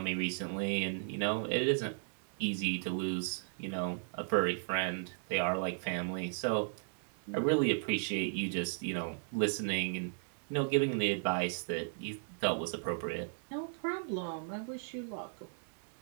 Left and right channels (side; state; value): left; silent; digital silence